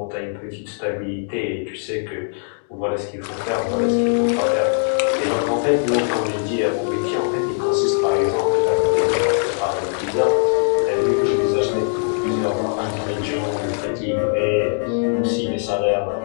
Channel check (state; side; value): silent; right; digital silence